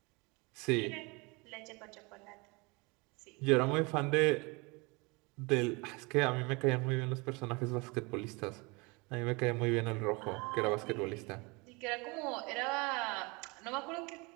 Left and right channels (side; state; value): left; quieter; 27.5 dB